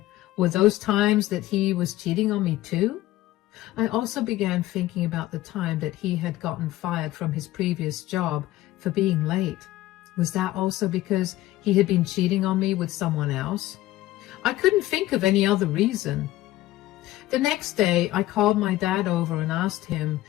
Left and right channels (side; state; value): right; quieter; 16.0 dB